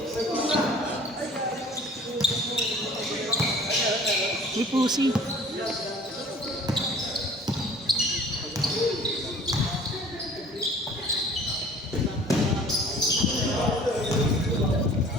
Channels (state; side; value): normal; both; correlation 0.48